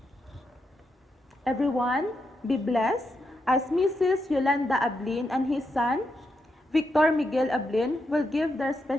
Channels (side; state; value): both; normal; correlation 0.83